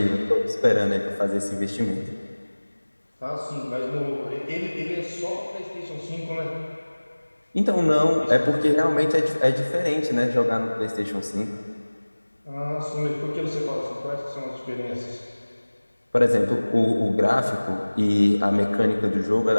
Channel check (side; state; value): both; inverted; correlation -1.00